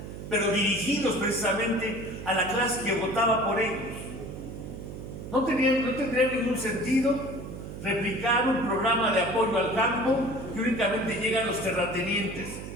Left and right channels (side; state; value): right; noise; hum, 10 dB below the sound